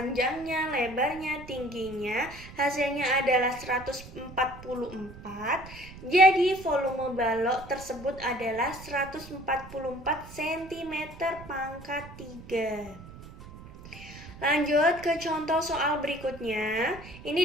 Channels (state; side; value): noise; right; rumble, 16 dB below the sound